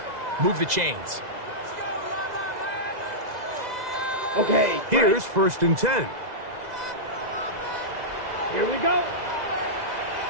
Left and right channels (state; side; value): late; left; 2.0 ms